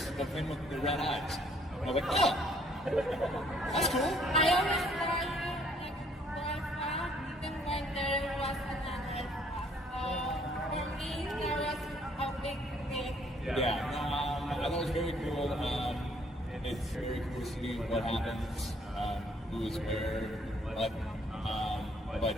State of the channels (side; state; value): both; normal; correlation 0.64